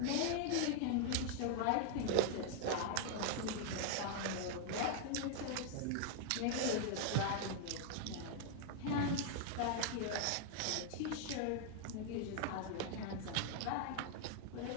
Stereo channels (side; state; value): both; different; correlation 0.00